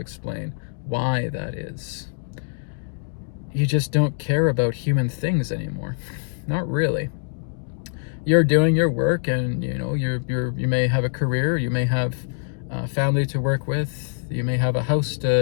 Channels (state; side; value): silent; right; digital silence